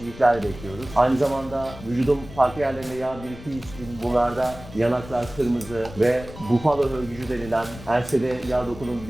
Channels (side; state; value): left; noise; rumble, 15 dB below the sound